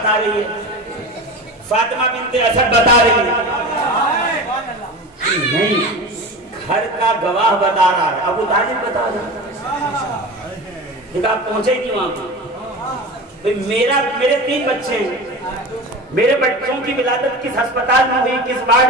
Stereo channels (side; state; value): both; normal; correlation 0.30